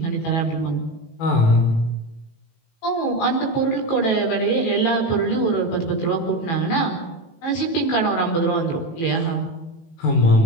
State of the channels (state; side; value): late; right; 18 ms